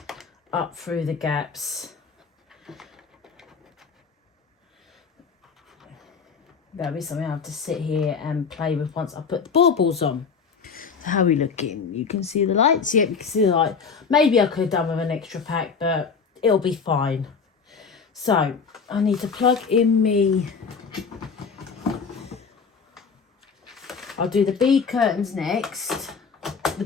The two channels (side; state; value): right; quieter; 5.6 dB